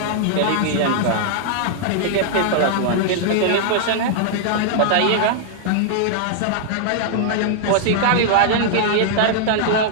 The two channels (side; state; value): both; different; correlation -0.01